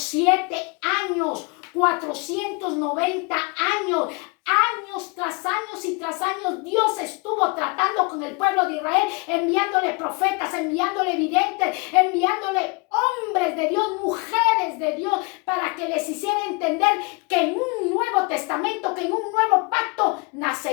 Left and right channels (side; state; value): right; quieter; 28.6 dB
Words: años, 490 años. Años tras años y tras años Dios estuvo tratando con el pueblo de Israel, enviándole profetas, enviándole videntes, enviándole hombres de Dios, mujeres de Dios, para que les hiciera entender que en un nuevo testamento, que en un nuevo pacto